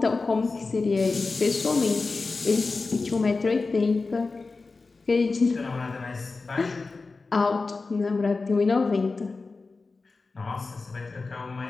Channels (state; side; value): quieter; right; 3.9 dB